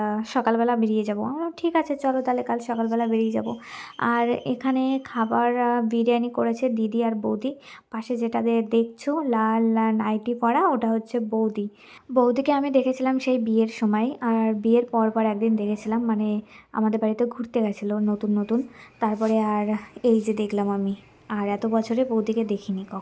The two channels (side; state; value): both; identical; correlation 1.00